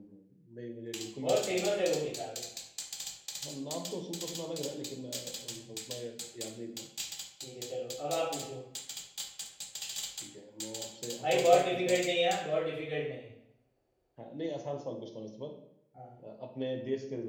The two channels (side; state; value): both; identical; correlation 1.00